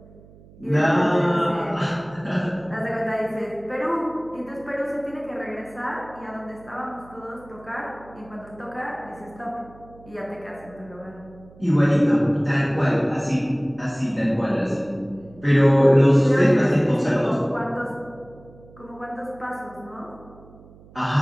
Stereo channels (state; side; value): noise; right; hum, 23 dB below the sound